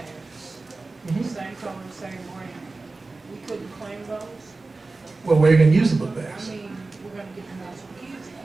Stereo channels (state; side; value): quieter; left; 3.5 dB